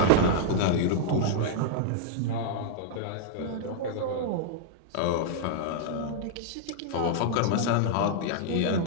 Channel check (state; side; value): different; both; correlation -0.01